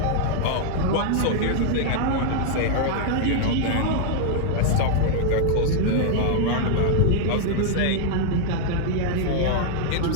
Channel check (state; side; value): different; both; correlation -0.01